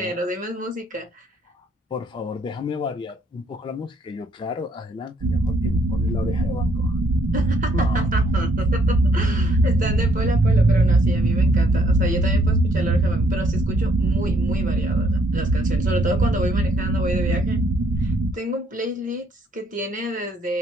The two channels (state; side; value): normal; both; correlation 0.68